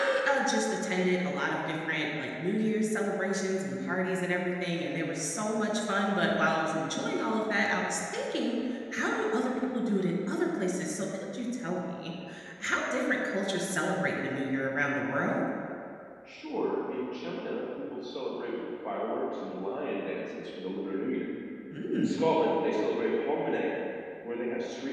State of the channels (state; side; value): identical; both; correlation 1.00